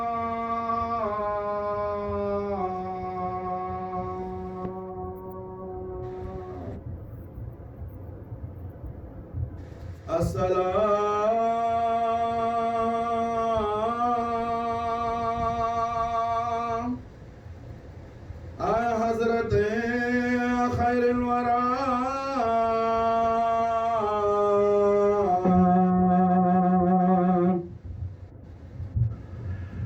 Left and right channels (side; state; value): both; identical; correlation 1.00